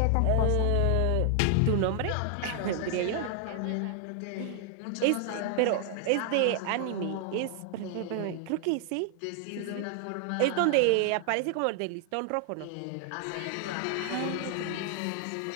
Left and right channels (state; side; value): different; both; correlation 0.00